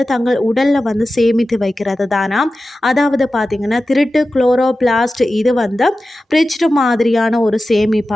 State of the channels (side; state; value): both; normal; correlation 0.94